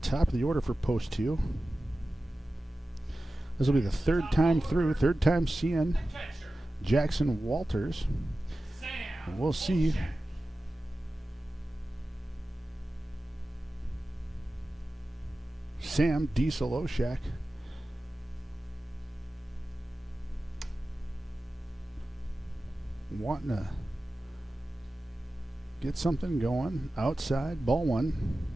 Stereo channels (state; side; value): normal; both; correlation 0.95